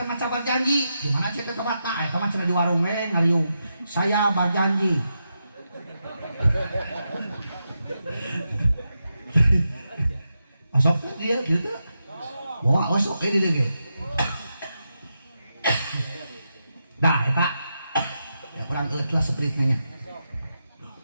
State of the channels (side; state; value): both; inverted; correlation -0.86